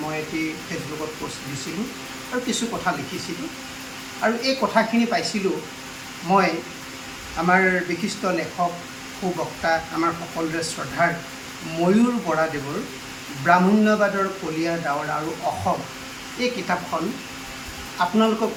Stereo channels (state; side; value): identical; both; correlation 1.00